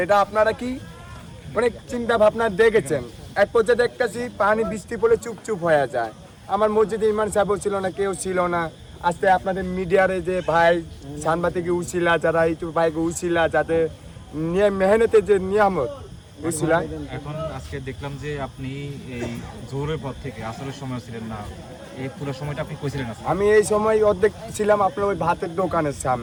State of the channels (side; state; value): both; identical; correlation 1.00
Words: এটা আপনারা কি অনেক চিন্তা ভাবনা দেখেছেন। এক পর্যায়ে দেখতেছি পানি বৃষ্টি পড়লে চুপচুপ হয়ে যায়। আমার মসজিদে ইমাম সাহেবও ছিল না, কেউ ছিল না। আজকে আপনাদের মিডিয়ারে যে ভাই সাংবাদিক উছিলা, যারা ইউটিউব ভাইকে উছিলা, যাতে মেহনতের যে নিয়ামত উছিলা। এখন আজকে দেখলাম যে আপনি এই জোহরের পর থেকে আসরের সময় ছিলেন না, এই পুরো সময়টা আপনি কইছিলেন? আমি এই সময় অর্ধেক ছিলাম আপনার ওই ভাতের দোকানের